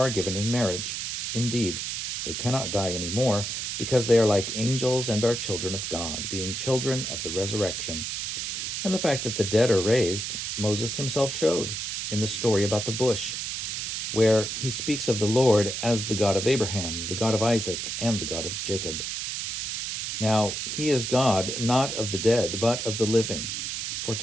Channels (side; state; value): right; noise; hiss, 3 dB below the sound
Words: are given in marriage. Indeed, they cannot die any more, because they are like angels and are children of God, being children of the resurrection. And the fact that the dead are raised, Moses himself showed in the story about the bush, where he speaks of the Lord as the God of Abraham, the God of Isaac, and the God of Jacob. Now, he is God not of the dead, but of the living, for